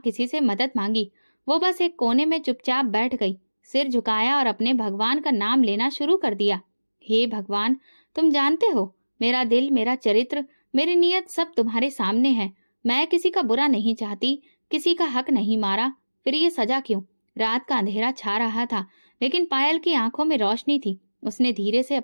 किसी से मदद मांगी। वो बस एक कोने में चुपचाप बैठ गई, सिर झुकाया और अपने भगवान का नाम लेना शुरू कर दिया। हे भगवान, तुम जानते हो, मेरा दिल, मेरा चरित्र, मेरी नीयत सब तुम्हारे सामने है। मैं किसी का बुरा नहीं चाहती, किसी का हक नहीं मारा, फिर ये सजा क्यों? रात का अंधेरा छा रहा था, लेकिन पायल की आंखों में रोशनी थी। उसने धीरे से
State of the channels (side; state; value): both; inverted; correlation -1.00